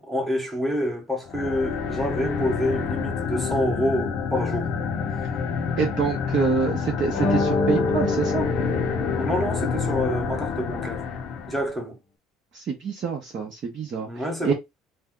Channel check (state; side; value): normal; both; correlation 0.63